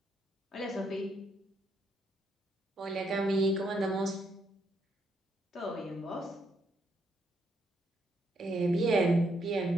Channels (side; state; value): both; normal; correlation 0.75